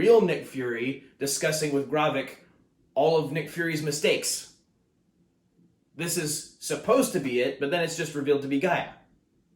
Nick Fury discussing with Gravik all of Nick Fury's mistakes. This is supposed to be it, but then it's just revealed to be Gaia.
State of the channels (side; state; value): both; identical; correlation 1.00